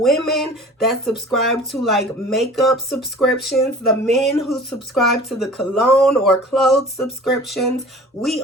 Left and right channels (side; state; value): both; normal; correlation 0.43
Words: that subscribe to like makeup subscriptions, the men who subscribe to the cologne or clothes subscriptions, we